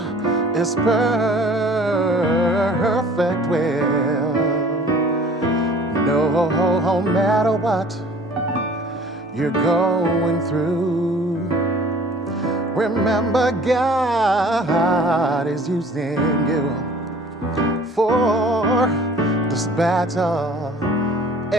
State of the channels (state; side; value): normal; both; correlation 0.50